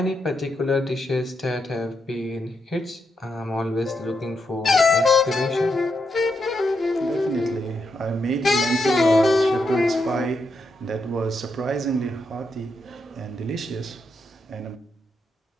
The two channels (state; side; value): normal; both; correlation 0.82